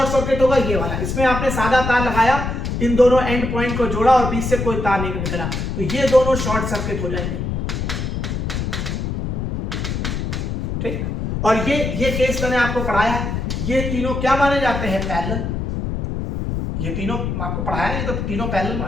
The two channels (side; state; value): left; noise; rumble, 2 dB below the sound